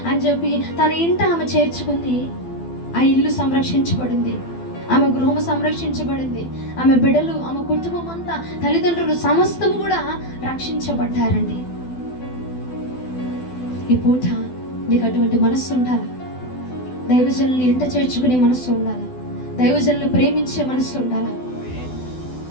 అని చెప్పి తన ఇంట ఆమె చేర్చుకుంది. ఆ ఇల్లు సంరక్షించబడింది, ఆమె గృహము సంరక్షించబడింది, ఆమె బిడ్డలు, ఆమె కుటుంబం అంతా, తల్లిదండ్రులు సమస్తము కూడా రక్షించబడ్డారండి. ఈ పూట నీకు అటువంటి మనస్సు ఉండాలి, దైవజనుల్ని ఇంట చేర్చుకునే మనస్సు ఉండాలి, దైవజనులు ప్రేమించే మనస్సు ఉండాలి.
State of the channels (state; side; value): late; right; 12 ms